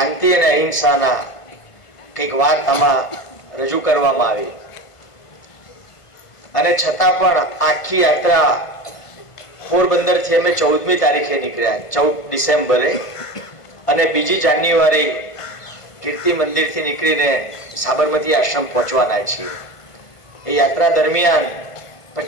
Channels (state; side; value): late; right; 1.5 ms